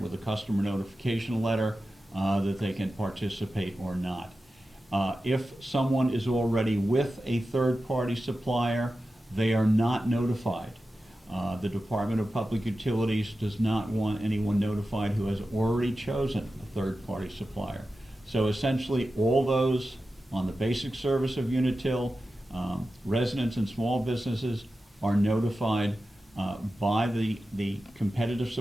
a customer notification letter that they can participate or not. If someone is already with a third-party supplier, they are not notified. The Department of Public Utilities does not want anyone notified who has already chosen a third-party supplier. So essentially, all those on the basic service of Unitil, residents and small businesses are notified by the competitive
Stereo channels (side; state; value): both; normal; correlation 0.93